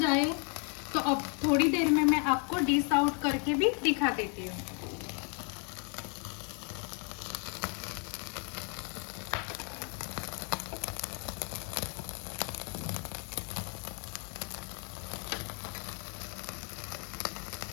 तो अब थोड़ी देर में मैं आपको डिश आउट करके भी दिखा देती हूँ।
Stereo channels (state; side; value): quieter; right; 38.6 dB